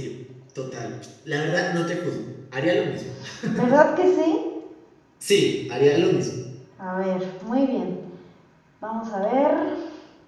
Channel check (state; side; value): identical; both; correlation 1.00